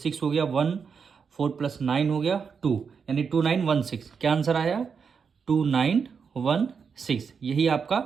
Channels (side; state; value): left; quieter; 6.1 dB